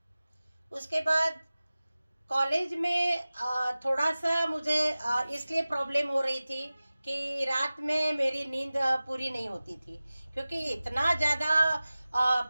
उसके बाद कॉलेज में थोड़ा सा मुझे इसलिए प्रॉब्लम हो रही थी कि रात में मेरी नींद पूरी नहीं होती थी, क्योंकि इतना ज़्यादा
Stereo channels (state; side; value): inverted; both; correlation -0.97